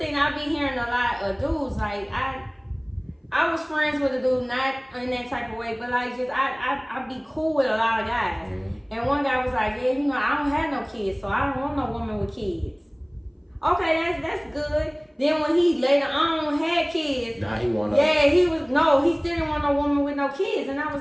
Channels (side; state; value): both; identical; correlation 1.00